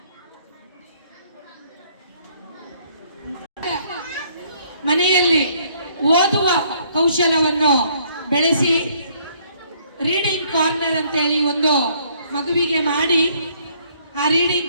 ಮನೆಯಲ್ಲಿ ಓದುವ ಕೌಶಲವನ್ನು ಬೆಳೆಸಿ ರೀಡಿಂಗ್ ಕಾರ್ನರ್ ಅಂತ ಹೇಳಿ ಒಂದು ಮಗುವಿಗೆ ಮಾಡಿ, ಆ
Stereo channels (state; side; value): inverted; both; correlation -0.64